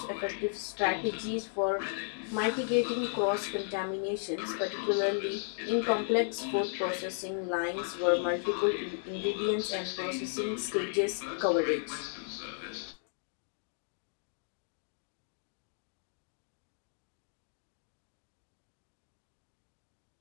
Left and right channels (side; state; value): right; silent; digital silence